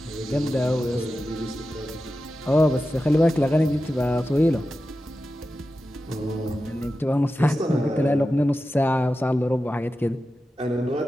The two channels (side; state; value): both; normal; correlation 0.92